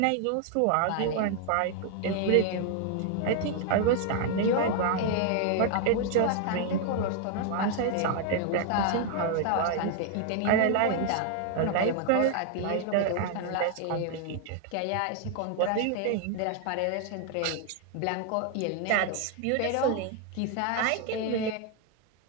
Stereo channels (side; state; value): both; different; correlation 0.00